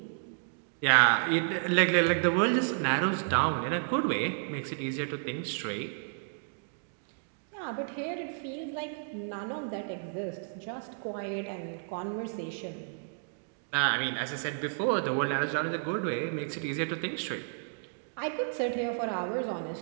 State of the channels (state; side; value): silent; left; digital silence